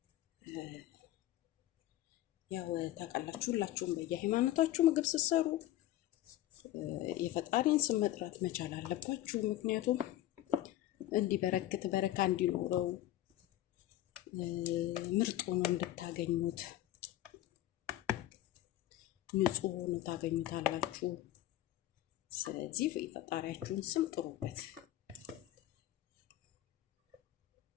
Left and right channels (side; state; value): right; quieter; 14.2 dB